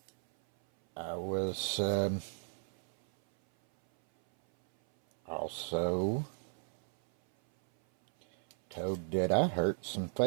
I was also told that I hurt some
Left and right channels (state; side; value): silent; left; 55 dB below the other